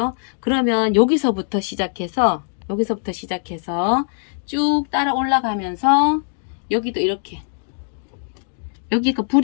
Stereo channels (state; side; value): silent; right; 62 dB below the other